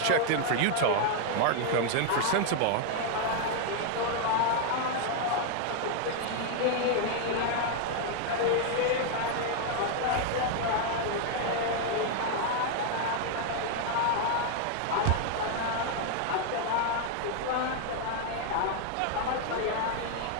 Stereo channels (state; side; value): different; both; correlation 0.00